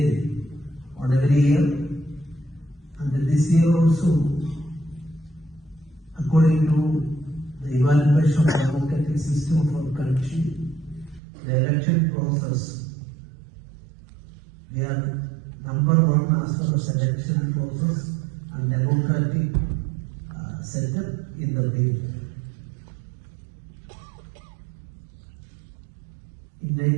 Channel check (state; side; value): drops out; left; at 11.2 s